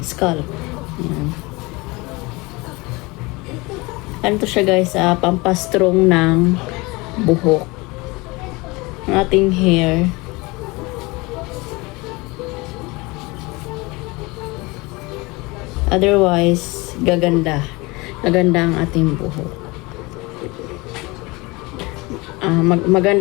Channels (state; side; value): quieter; right; 24.3 dB